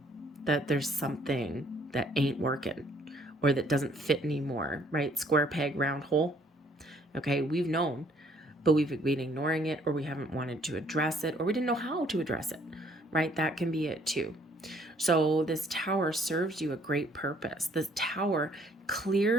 that there's something that ain't working or that doesn't fit anymore, right? Square peg, round hole, okay? We've known, but we've been ignoring it, or we haven't wanted to address it, or we didn't know how to address it, right? That can be it too. So this Tower serves you a great purpose. This Tower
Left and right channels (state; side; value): normal; both; correlation 0.63